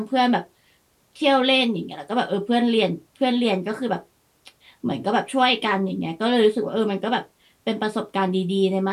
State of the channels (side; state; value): both; identical; correlation 1.00